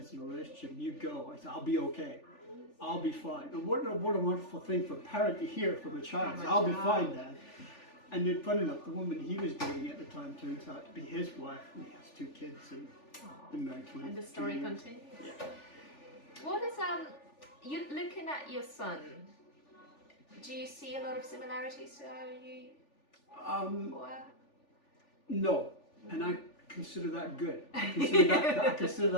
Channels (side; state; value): right; late; 3.4 ms